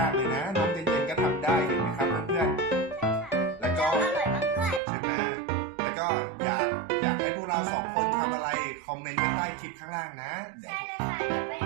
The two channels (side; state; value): left; drops out; at 4.8 s